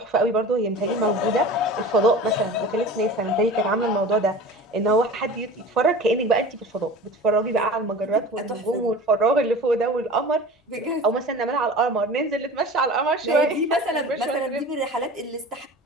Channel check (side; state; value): both; normal; correlation 0.37